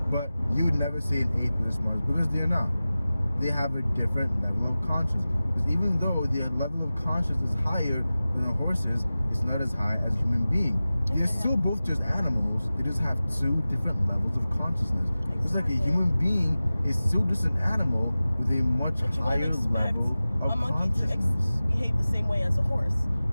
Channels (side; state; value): both; inverted; correlation -0.96